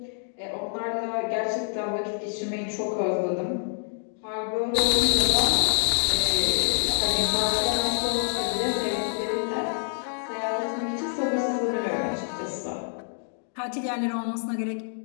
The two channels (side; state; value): right; silent; digital silence